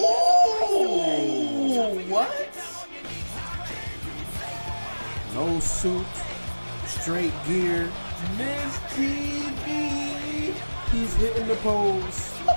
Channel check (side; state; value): both; inverted; correlation -1.00